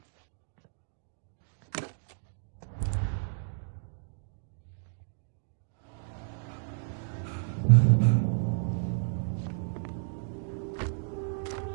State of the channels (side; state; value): left; silent; digital silence